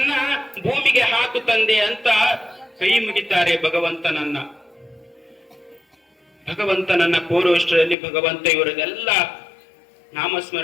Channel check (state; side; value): drops out; right; at 8.0 s